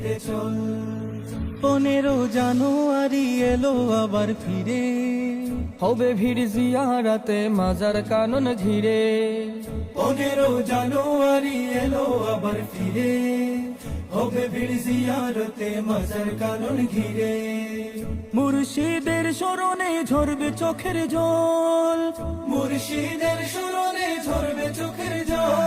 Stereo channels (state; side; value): identical; both; correlation 1.00